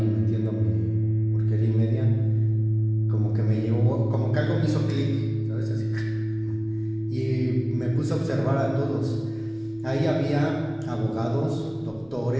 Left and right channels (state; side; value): noise; left; rumble, 27 dB below the sound